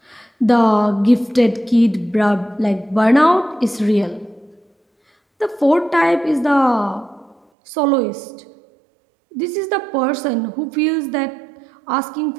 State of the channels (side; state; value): left; drops out; at 7.4 s